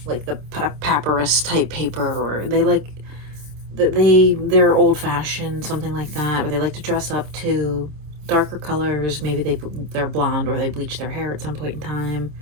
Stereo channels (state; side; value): late; left; 27 ms